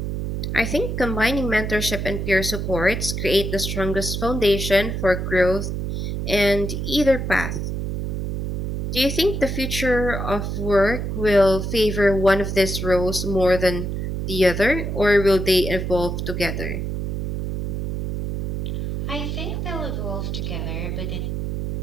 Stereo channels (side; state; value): right; noise; hum, 2 dB below the sound